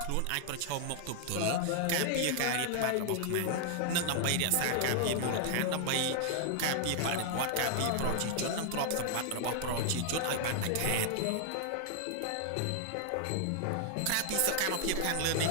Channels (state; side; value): different; both; correlation 0.00